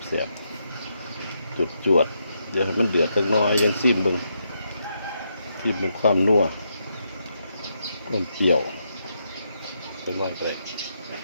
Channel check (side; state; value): both; inverted; correlation -0.80